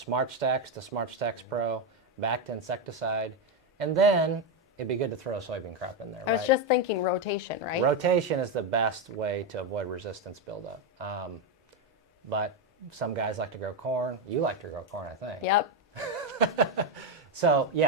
Stacks to Smart Stacks Pro, back to insecticide, and then it'd be good to throw a soybean crop in there, I right? was just thinking rotation, right? Rotation is the best way to avoid resistance buildup. But some guys like to grow corn. You like to grow corn, I think. Yep. So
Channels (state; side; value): normal; both; correlation 0.07